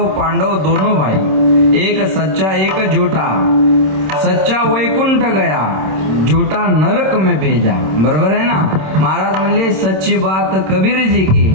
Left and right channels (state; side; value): late; left; 26 ms